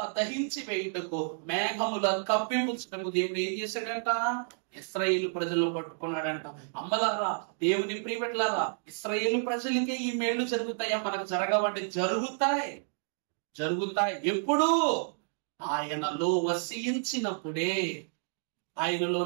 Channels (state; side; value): silent; left; digital silence